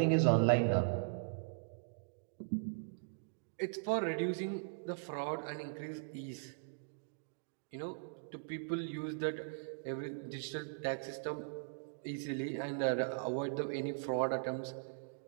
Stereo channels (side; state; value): left; silent; digital silence